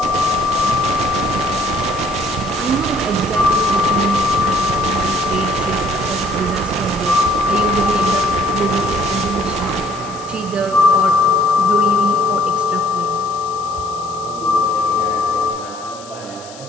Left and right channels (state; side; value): noise; left; hiss, 18 dB below the sound